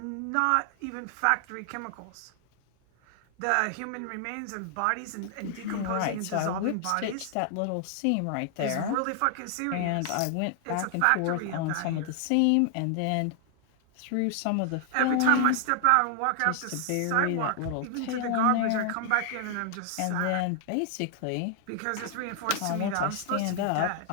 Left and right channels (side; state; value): both; different; correlation 0.00